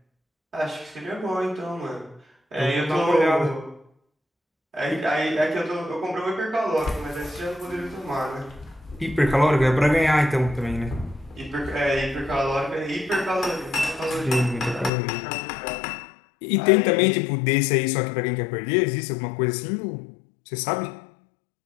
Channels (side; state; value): right; drops out; at 14.9 s